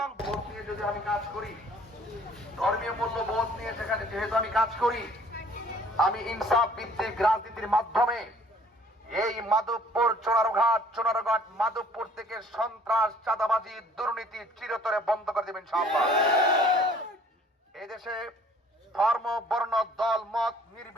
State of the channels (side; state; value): both; normal; correlation 0.56